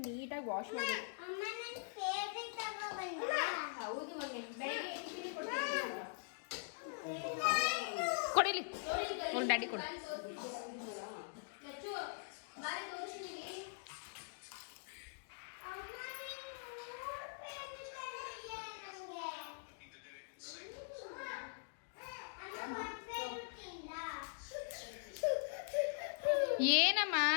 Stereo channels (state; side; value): silent; right; digital silence